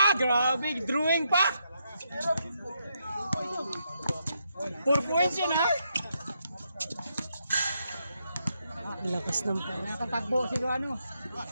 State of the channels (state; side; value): inverted; both; correlation -0.80